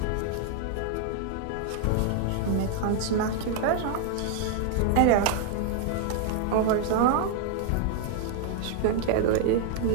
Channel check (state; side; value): different; both; correlation 0.00